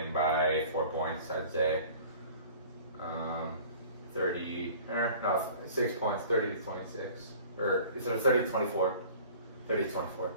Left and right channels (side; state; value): both; inverted; correlation -0.46